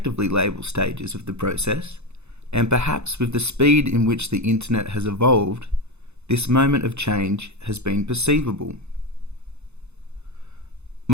label stages of the process, and perhaps with the speed in which the internet has evolved, this moment of change has been perceivable.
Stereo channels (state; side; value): late; left; 0.81 ms